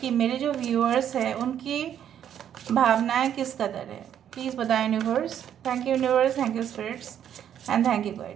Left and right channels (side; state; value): left; quieter; 9.7 dB